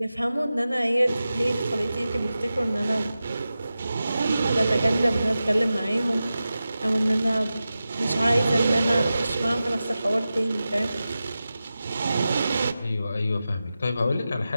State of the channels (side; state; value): both; inverted; correlation -0.93